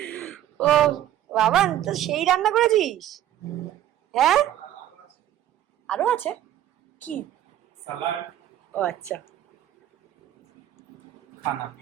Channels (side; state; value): left; quieter; 12.2 dB